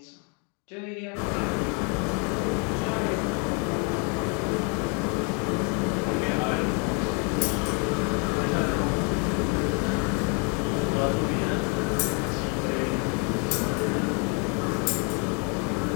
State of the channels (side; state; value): right; quieter; 35.8 dB